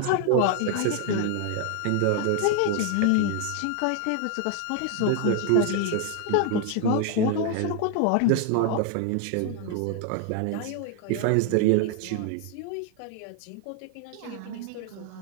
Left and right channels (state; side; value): different; both; correlation 0.00